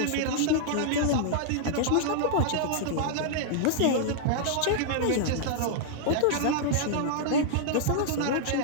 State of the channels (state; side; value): different; both; correlation -0.01